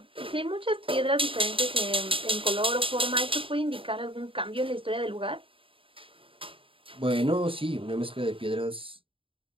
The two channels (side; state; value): left; late; 0.26 ms